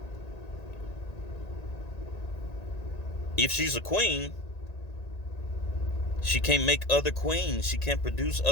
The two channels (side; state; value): right; late; 1.9 ms